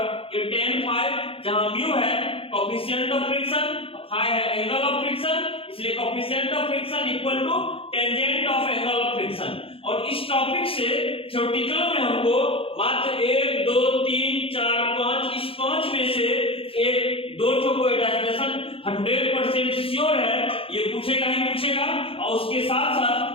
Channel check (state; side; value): late; right; 0.27 ms